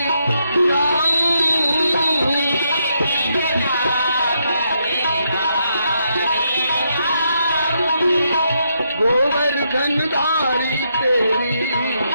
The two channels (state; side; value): inverted; both; correlation -0.78